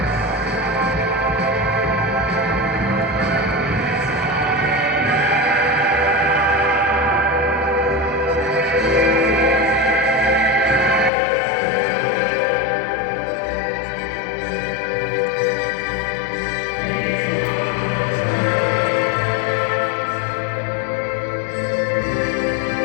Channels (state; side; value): drops out; right; at 11.1 s